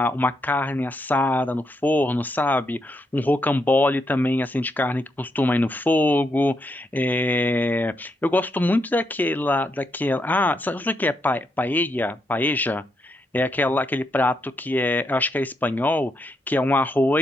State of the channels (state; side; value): normal; both; correlation 0.80